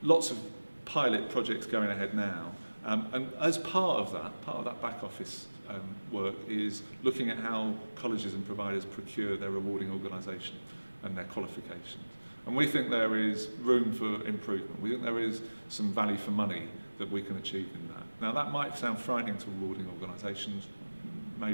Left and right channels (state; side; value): inverted; both; correlation -1.00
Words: Lots of pilot projects going ahead now, and as part of that back office work is looking at how colleges and providers procure their awarding organisation and their qualifications. And we think there is room for improvement. We think there is some value for money that we can achieve in that. Now that might sound frightening to rewarding organisations,